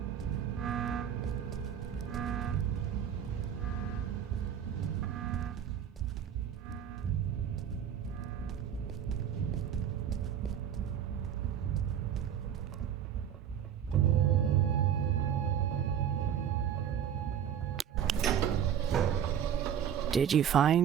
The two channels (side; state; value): left; quieter; 9.1 dB